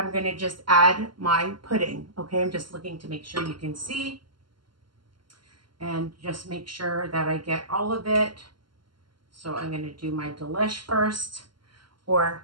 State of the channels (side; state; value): left; late; 0.72 ms